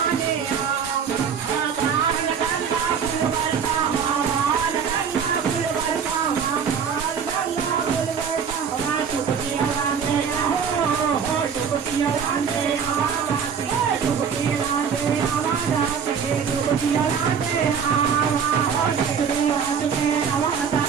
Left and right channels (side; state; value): left; quieter; 6.8 dB